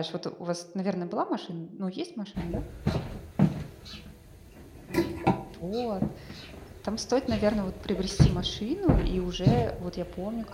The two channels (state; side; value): identical; both; correlation 1.00